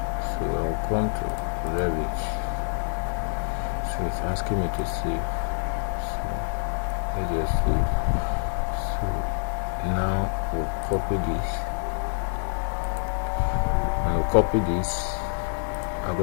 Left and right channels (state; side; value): silent; right; 60 dB below the other